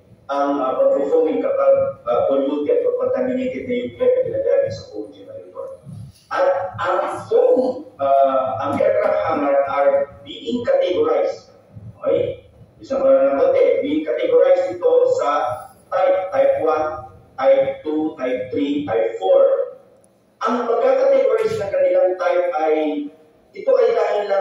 ang pag-foaming kapag polluted or contaminated na yung air na ginagaling sa foam generator. At ang foam, ang aircraft hangar are being categorized. Okay? Isang natin, being categorized ito sa type 1, type 2, type 3, type 4. Ang pagkakategorize ng kanilang type ay, ito ay dahil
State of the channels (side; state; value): both; identical; correlation 1.00